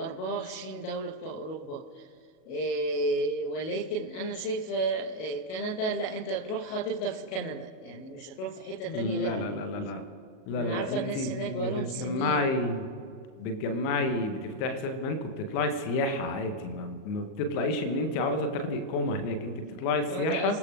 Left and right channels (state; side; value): late; right; 38 ms